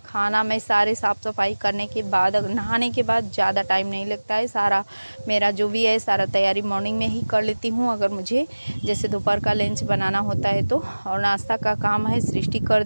खाना मैं सारे साफ़ सफाई करने के बाद, नहाने के बाद ज़्यादा टाइम नहीं लगता है। सारा मेरा जो भी है सारा तैयारी मॉर्निंग में ही कर लेती हूँ, अगर मुझे जैसे दोपहर का लंच बनाना होता है तो। और नाश्ता का काम है सृष्टि कर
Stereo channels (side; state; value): both; inverted; correlation -1.00